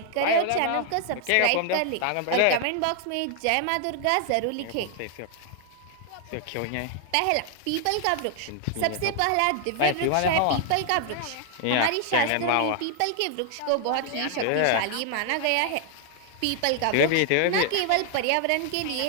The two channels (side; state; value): both; different; correlation 0.00